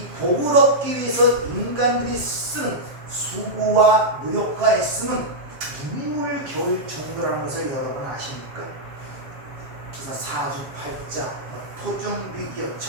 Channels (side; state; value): left; late; 7.4 ms